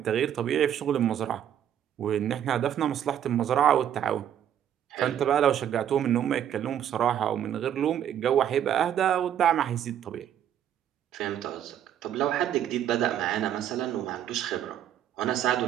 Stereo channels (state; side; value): quieter; left; 10.1 dB